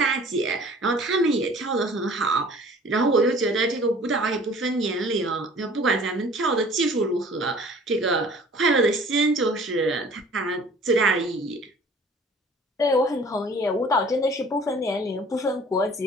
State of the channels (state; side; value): normal; both; correlation 0.49